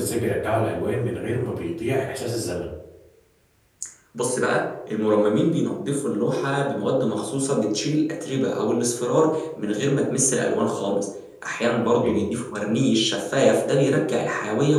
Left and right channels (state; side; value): identical; both; correlation 1.00